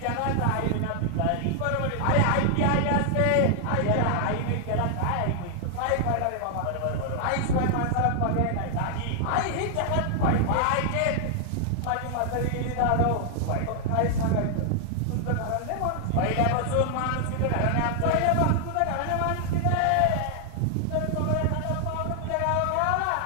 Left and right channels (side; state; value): both; different; correlation 0.00